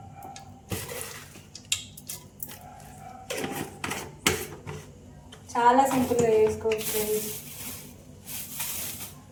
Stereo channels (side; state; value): both; identical; correlation 1.00